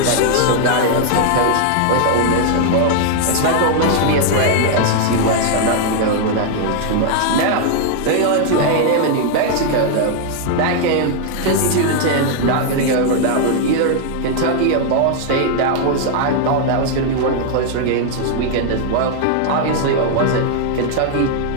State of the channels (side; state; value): both; different; correlation 0.00